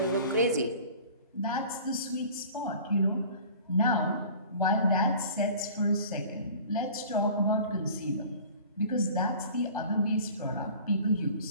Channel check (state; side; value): inverted; both; correlation -0.44